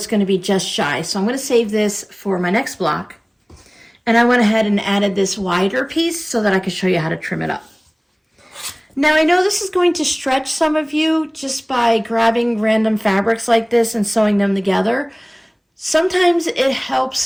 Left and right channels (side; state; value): both; identical; correlation 1.00